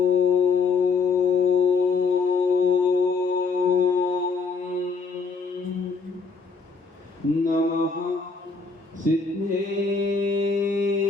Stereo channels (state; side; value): quieter; right; 4.5 dB